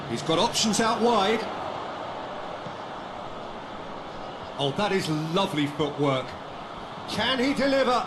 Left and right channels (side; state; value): both; identical; correlation 1.00